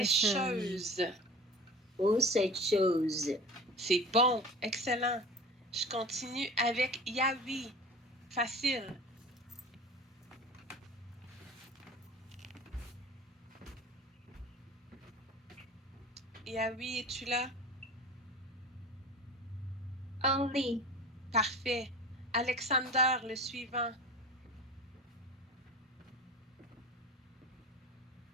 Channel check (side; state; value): both; normal; correlation 0.37